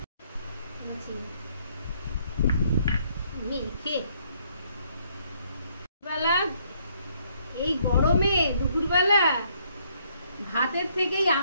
মেখে বেলা এই গরমে দুপুরবেলা ভাতের থেকেই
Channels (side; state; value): both; inverted; correlation -0.68